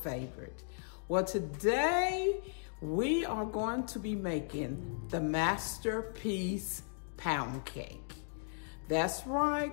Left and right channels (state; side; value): silent; right; digital silence